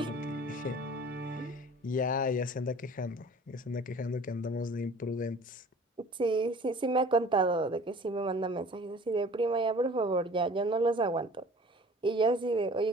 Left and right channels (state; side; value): normal; both; correlation 0.47